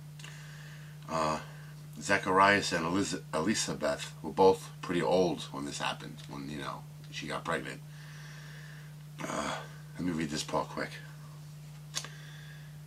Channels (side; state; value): both; identical; correlation 1.00